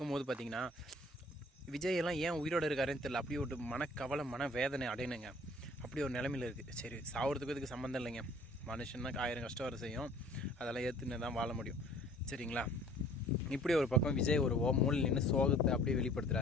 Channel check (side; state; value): both; normal; correlation 0.52